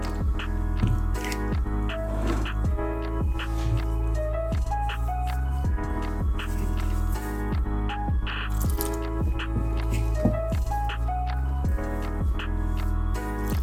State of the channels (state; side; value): identical; both; correlation 1.00